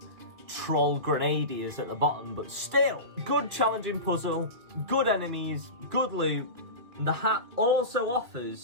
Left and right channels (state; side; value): late; left; 2.7 ms